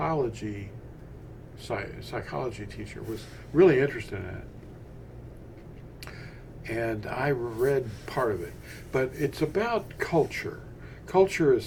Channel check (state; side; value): identical; both; correlation 1.00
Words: teacher was really interested in it. And I read part of it. But it's about culture. Culture is